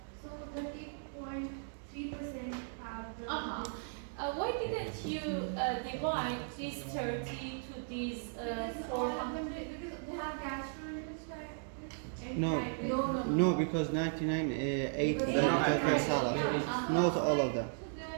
So 30.3% have the. Why didn't you divide these 30 to these 400? Because they have gastrointestinal. No, because 99 ate the potato salad. Not all of them. So they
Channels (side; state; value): left; silent; digital silence